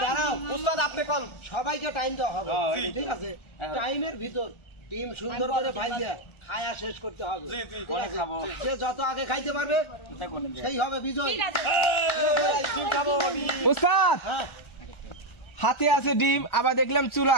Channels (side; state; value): right; late; 1.3 ms